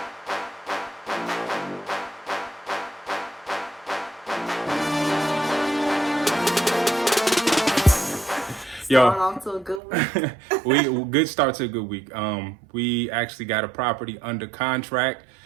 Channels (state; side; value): drops out; left; at 9.8 s